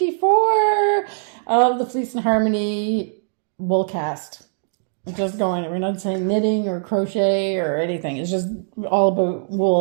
of the Fleece and Harmony Woolcast. Just going, we're not saying knitting or crochet or anything. It's just all about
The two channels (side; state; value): left; silent; digital silence